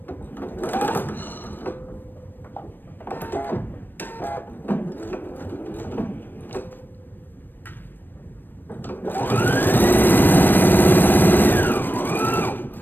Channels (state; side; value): late; right; 0.093 ms